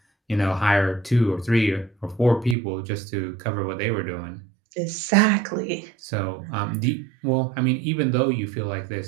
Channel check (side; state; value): left; drops out; at 2.6 s